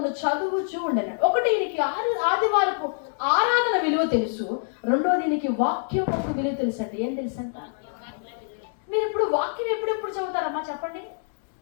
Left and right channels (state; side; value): silent; right; digital silence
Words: చదువుచూ ఉండెను. ఒకటి, ఈయనకి ఆదివారపు ఆరాధన విలువ తెలుసు. రెండోది, ఈయనకి వాక్యం ఒక విలువ తెలుసు అండి. ఏం తెలుసు అంట? మీరు ఇప్పుడు వాక్యం ఎప్పుడు చదువుతారమ్మా చెప్పండి?